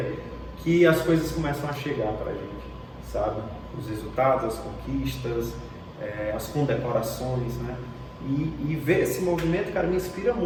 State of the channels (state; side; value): identical; both; correlation 1.00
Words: que as coisas começam a chegar pra gente, sabe? Os resultados, as conquistas, as condecorações, né? E ver esse movimento, cara, me inspira